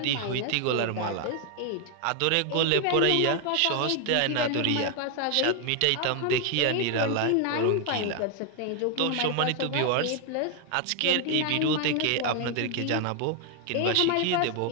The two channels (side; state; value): both; different; correlation 0.00